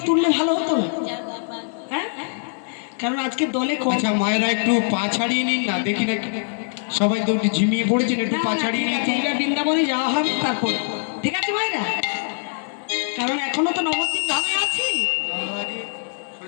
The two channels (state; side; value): silent; right; 64 dB below the other